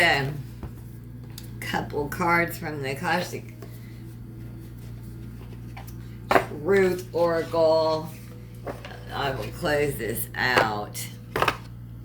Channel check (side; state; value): both; identical; correlation 1.00